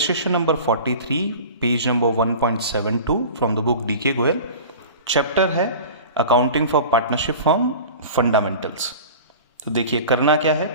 number 43, page number 1.72 from the book DK Goyal. Chapter है accounting for partnership firm fundamentals. तो देखिए करना क्या है,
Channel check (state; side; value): inverted; both; correlation -0.37